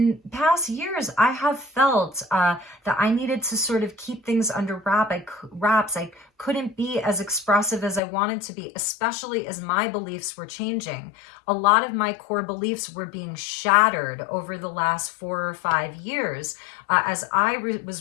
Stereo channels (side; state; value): right; drops out; at 8.0 s